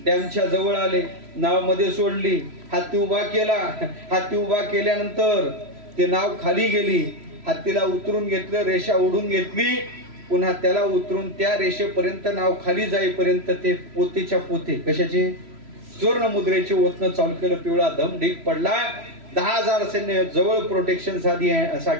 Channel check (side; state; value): left; late; 3.0 ms